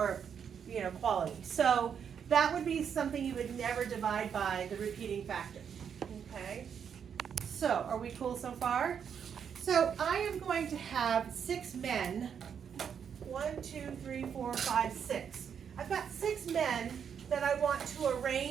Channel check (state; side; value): quieter; left; 7.6 dB